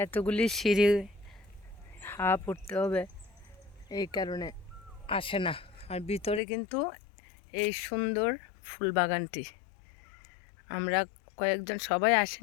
এতগুলি সিঁড়ি হাফ উঠতে হবে, এই কারণে আসে না। আর ভিতরে কিন্তু এই সুন্দর ফুল বাগানটি, আমরা কয়েকজন, সবাই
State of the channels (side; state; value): right; drops out; at 6.4 s